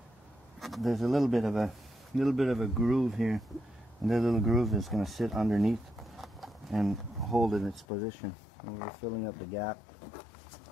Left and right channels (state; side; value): drops out; right; at 7.9 s